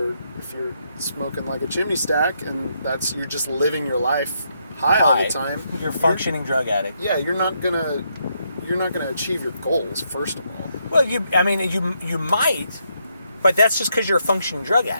smoking like a chimney stack, and you're just living your life high all the time. You're a functioning drug addict. Yeah, you're not gonna achieve your goals. First of all. Well, you might, but that's just because you're a functioning drug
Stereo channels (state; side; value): inverted; both; correlation -0.77